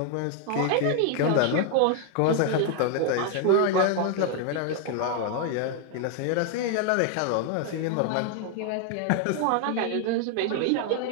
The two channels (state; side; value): different; both; correlation 0.00